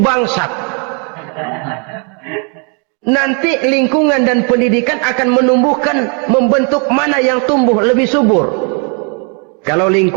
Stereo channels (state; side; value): quieter; left; 37.3 dB